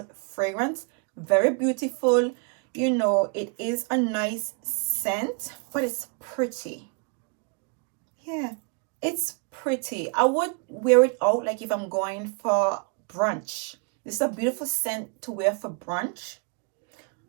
fragrance. Very beautiful. You know, it is a nice scent, but it's pretty. Yeah. It's pretty. I would wear it out like if I'm going for brunch. This is a beautiful scent to wear for brunch.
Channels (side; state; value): left; quieter; 35.4 dB